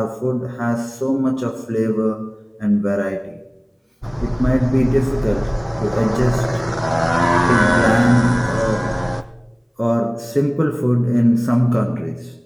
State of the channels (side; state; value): both; identical; correlation 1.00